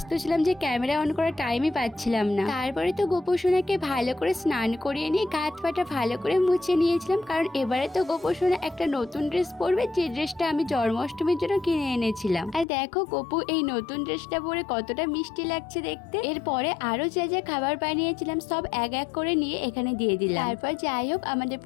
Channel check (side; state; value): right; drops out; at 12.7 s